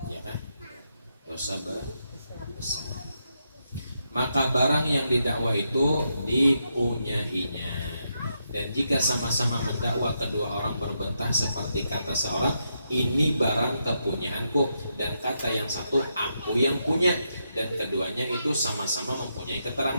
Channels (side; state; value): both; inverted; correlation -0.82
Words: ya kan? Dosa besar. Maka barang yang didakwa itu dipunyainya. Dan jika sama-sama mendakwa kedua orang berbentah seperti kata seorang, ini barang kepunyaanku, dan kata yang satu aku yang punya, dan keduanya itu sama-sama mempunyai